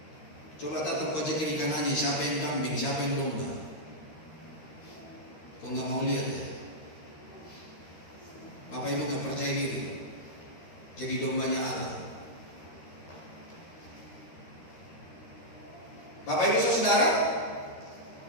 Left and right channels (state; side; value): late; right; 13 ms